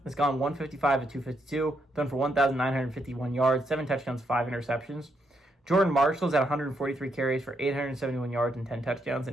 has gone 155 at 252, thrown for 1,951 yards, 7 touchdowns, 5 interceptions. Jordan Marshall's at 143 carries for 871 yards and 10 touchdowns,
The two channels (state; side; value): normal; both; correlation 0.78